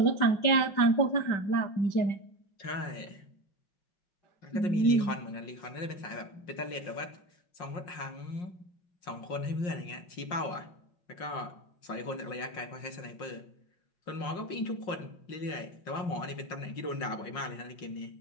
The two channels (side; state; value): right; late; 5.6 ms